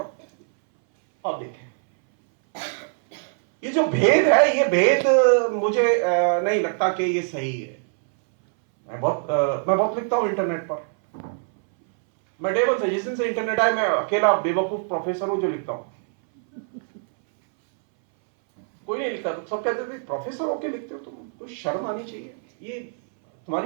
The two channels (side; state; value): left; silent; 61 dB below the other